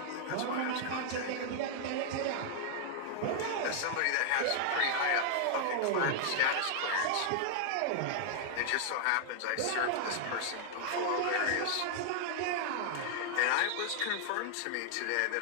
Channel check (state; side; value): different; both; correlation 0.00